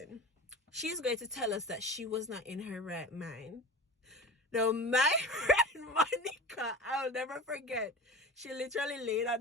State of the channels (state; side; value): normal; both; correlation 0.33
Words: She's going to tell us that she was not in her right mind. Now, my friend Monica, I'll never forget, she literally laid on